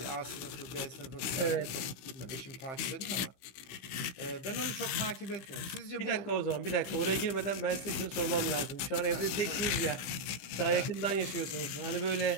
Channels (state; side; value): late; right; 16 ms